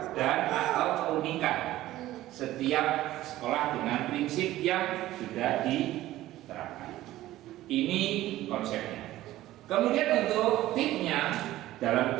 dan atau keunikan setiap sekolah dengan prinsip yang sudah diterapkan. Ini konsepnya. Kemudian untuk tipnya, dalam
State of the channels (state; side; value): quieter; left; 15.3 dB